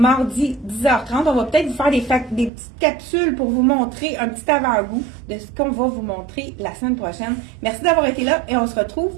10h30. On va peut-être vous faire des petites capsules pour vous montrer un petit avant-goût de ce qu'on va vous montrer la semaine prochaine. Merci d'avoir été là et on se retrouve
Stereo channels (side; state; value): left; drops out; at 2.5 s